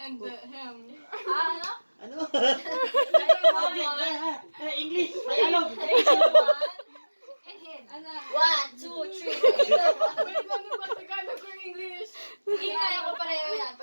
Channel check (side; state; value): both; inverted; correlation -1.00